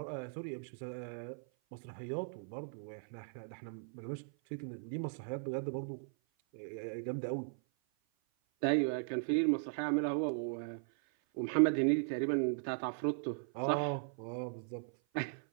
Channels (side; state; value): left; silent; 53 dB below the other